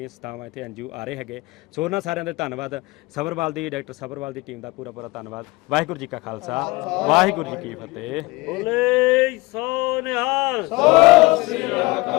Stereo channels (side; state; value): right; quieter; 22.9 dB